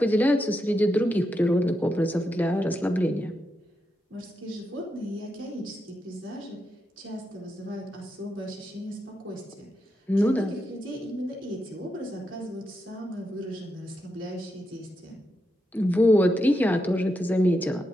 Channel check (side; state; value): both; normal; correlation 0.85